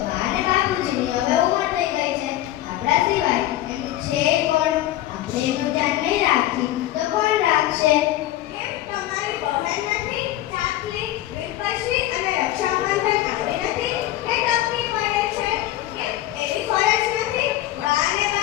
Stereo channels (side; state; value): right; quieter; 14.5 dB